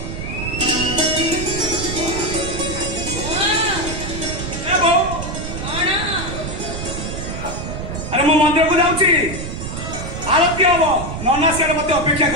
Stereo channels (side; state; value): right; noise; rumble, 6 dB below the sound